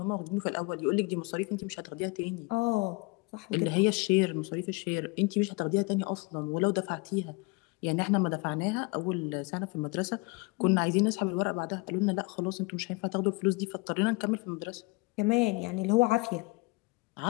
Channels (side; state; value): right; quieter; 26.6 dB